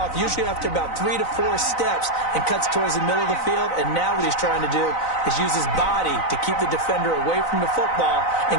usually after about 3 to 4 steps, and cuts towards the middle of the field. And now what he's trying to do is use his body to keep the defender away from the football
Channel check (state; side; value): late; right; 4.0 ms